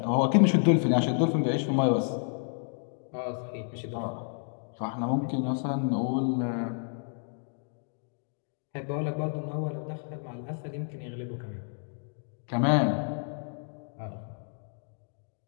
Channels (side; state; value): right; silent; 58 dB below the other